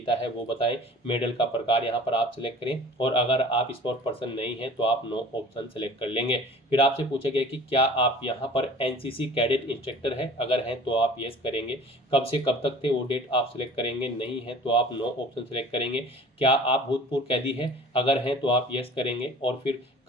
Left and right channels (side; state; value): both; normal; correlation 0.45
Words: है वो बताएं, मेडल का प्रकार यहाँ पर आप सिलेक्ट करें, और अगर आप स्पोर्ट पर्सन नहीं हैं तो आप नो ऑप्शन सेलेक्ट कर लेंगे। फिर आपसे पूछा गया कि क्या आप यहाँ पर NCC कैडेट इंस्ट्रक्टर है, अगर हैं तो आप यस करेंगे। कब से कब तक थे वो डेट आप सिलेक्ट करेंगे, नहीं है तो आप नो ऑप्शन सेलेक्ट करेंगे। क्या आप भूतपूर्व कैदी हैं, अगर हैं तो आप यस करेंगे, और फिर